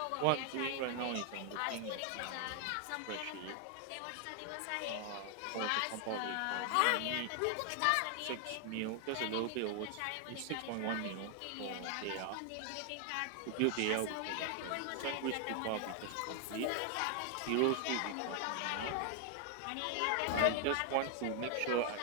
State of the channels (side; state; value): both; different; correlation 0.00